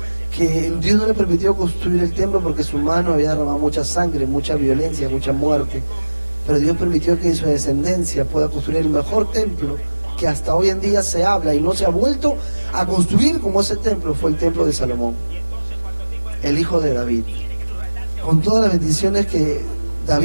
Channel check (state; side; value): inverted; both; correlation -1.00